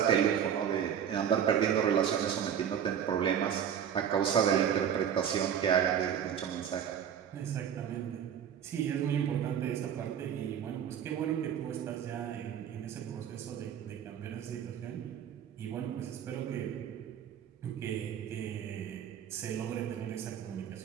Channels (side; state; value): left; quieter; 8.8 dB